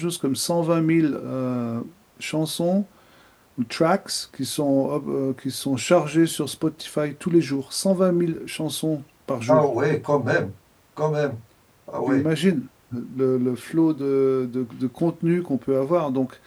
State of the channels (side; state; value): both; identical; correlation 1.00